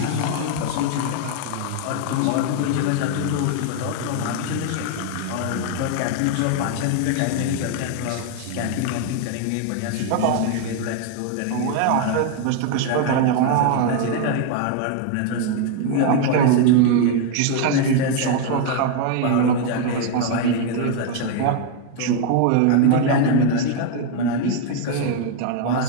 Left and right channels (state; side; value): different; both; correlation 0.00